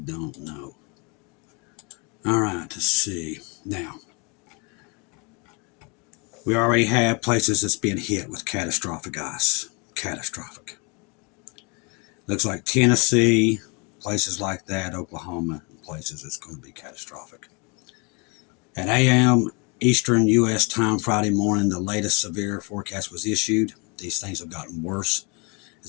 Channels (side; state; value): right; quieter; 31.1 dB